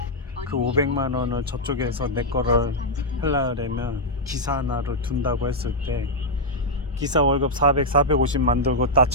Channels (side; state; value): both; normal; correlation -0.03